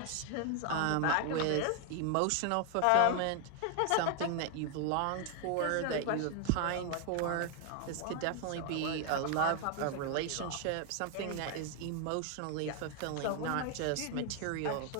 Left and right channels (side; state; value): both; different; correlation 0.00